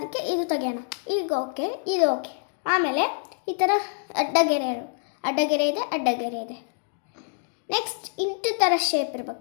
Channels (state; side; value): silent; right; digital silence